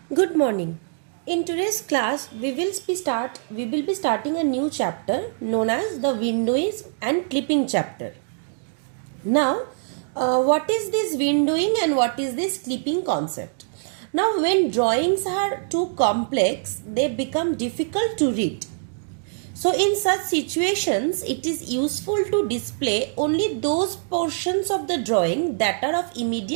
Good morning. In today's class, we will be starting a new chapter known as the windowing and clipping chapter. Now, what is this windowing and what is this clipping concept? Now, when drawings are too complex, they become difficult to read. So, in such situations, it is useful to display only those portions of the drawing that are of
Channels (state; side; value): silent; left; digital silence